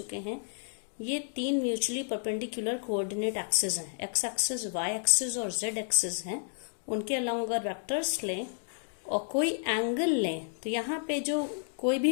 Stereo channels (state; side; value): silent; right; digital silence